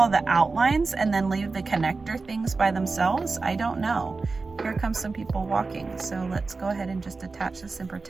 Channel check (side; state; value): left; quieter; 4.0 dB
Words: the outlines and then leave the connector things by themselves? I don't know. Here comes some people walking. So let's go ahead and just attach this and